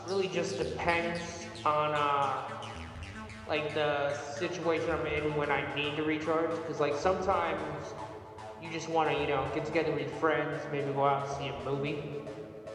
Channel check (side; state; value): both; identical; correlation 1.00